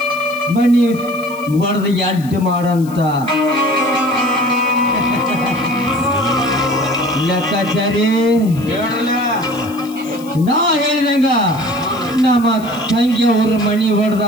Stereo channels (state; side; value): noise; left; hiss, 21 dB below the sound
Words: ಮಣಿ ಒಡೆದು ಅಡ್ಡ ಮಾಡಂತ. ಲೆಕ್ಕಾಚಾರಿ ನಾ ಹೇಳಿದಂಗ ನಮ್ಮ ತಂಗಿಯವ್ರ ಮಣಿ